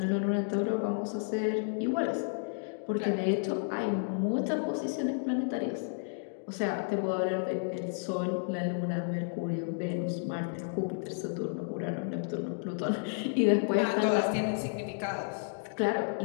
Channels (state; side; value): silent; right; digital silence